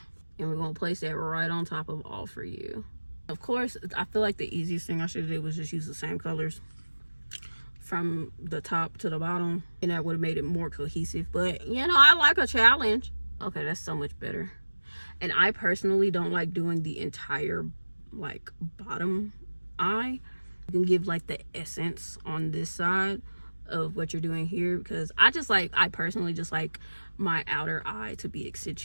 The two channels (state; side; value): inverted; both; correlation -1.00